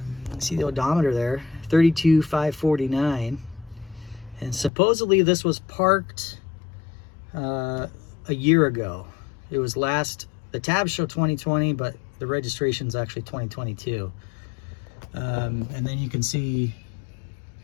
See the odometer there, 32,549, and supposedly this was parked a year ago. It was the tabs show 2020, but the registration's actually 2022. And then you can see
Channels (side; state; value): right; drops out; at 4.7 s